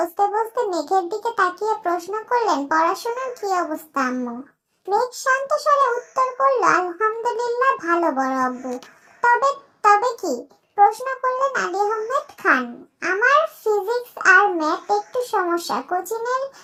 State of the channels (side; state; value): both; identical; correlation 1.00